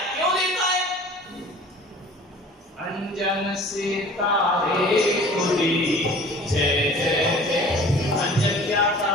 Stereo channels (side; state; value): both; normal; correlation 0.46